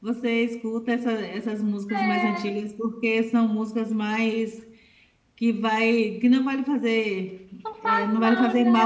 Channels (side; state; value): both; identical; correlation 1.00